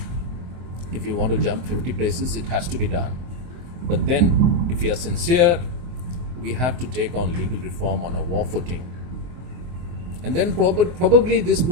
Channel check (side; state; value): left; late; 24 ms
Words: If you want to jump 50 places, it has to be done. But then, if we are sincere, we have to take on legal reform on a war footing. And then probably this